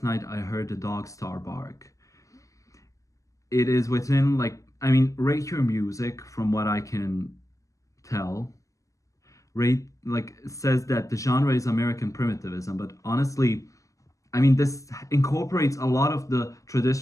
Night I Heard the Dog Star Bark. It is within, like, I mean, rate your music from what I can tell. Rate, like, says that the genre is American primitivism, but honestly, I mean, this incorporates a lot of the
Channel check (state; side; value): late; right; 0.16 ms